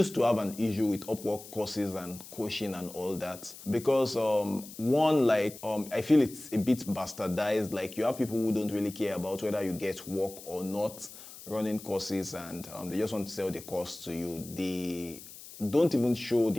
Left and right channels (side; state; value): left; noise; hiss, 16 dB below the sound